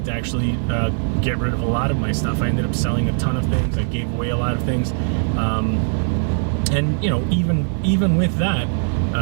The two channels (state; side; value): silent; left; 65 dB below the other